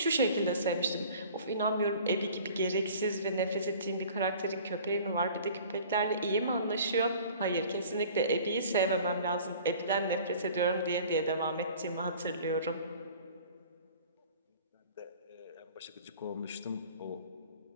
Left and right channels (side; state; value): both; inverted; correlation -0.47